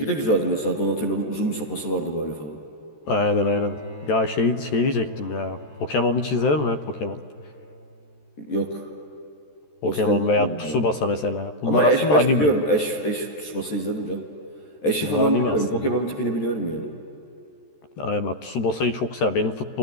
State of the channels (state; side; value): late; right; 14 ms